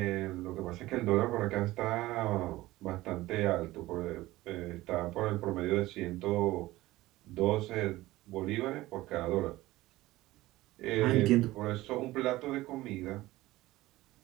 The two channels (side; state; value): left; quieter; 17.7 dB